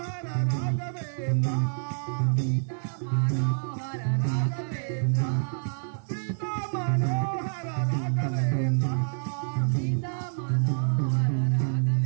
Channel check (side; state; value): left; silent; 55 dB below the other